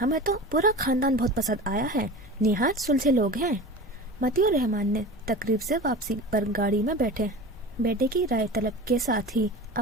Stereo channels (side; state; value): both; normal; correlation 0.33